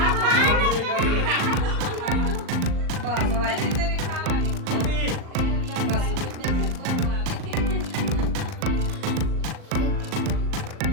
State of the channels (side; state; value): left; late; 39 ms